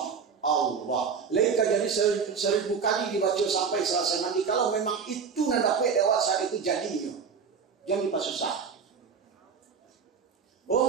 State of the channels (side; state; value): left; quieter; 6.0 dB